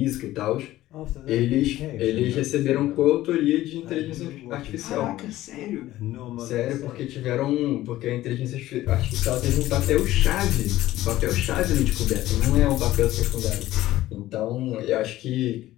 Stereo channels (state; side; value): quieter; right; 15.4 dB